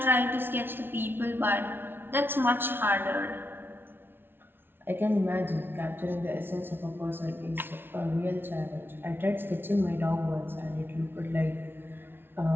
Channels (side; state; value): left; late; 0.11 ms